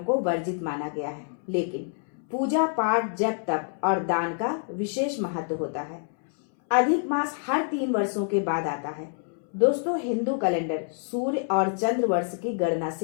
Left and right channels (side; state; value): right; silent; 60 dB below the other